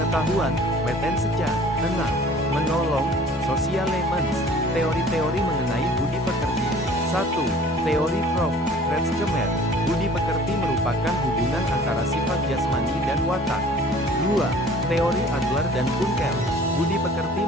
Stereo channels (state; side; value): normal; both; correlation 0.49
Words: wetenschap. 6. Menolong, socialemens. Teori-teori mengenai budi pekerti. 1. Teori Prof. Kretschmer. Budi pekerti merupakan hubungan antara sifat jasmani dan watak. 2. Teori Adler dan Kunkel. Budi pekerti